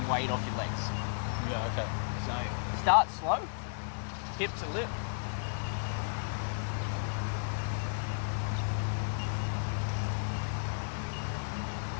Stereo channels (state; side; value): silent; right; 55 dB below the other